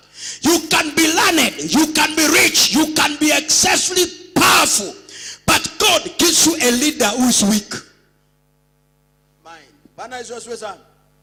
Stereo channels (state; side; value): identical; both; correlation 1.00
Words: You can be learned, you can be rich, you can be excessively powerful, but God gives you a leader who is weak.